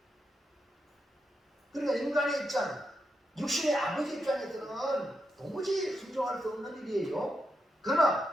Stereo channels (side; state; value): both; normal; correlation 0.84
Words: 그러니까 인간의 입장 육신의 아버지 입장에서는 도무지 순종할 수 없는 일이에요.